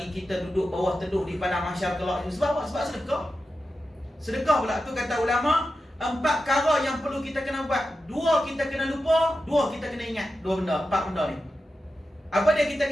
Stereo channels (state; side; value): normal; both; correlation 0.91